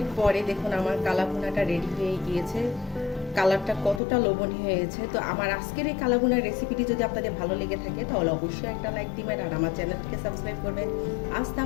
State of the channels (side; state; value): right; drops out; at 4.0 s